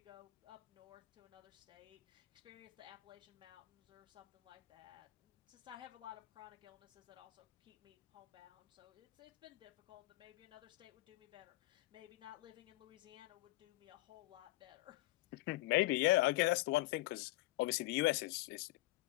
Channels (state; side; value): quieter; right; 18.9 dB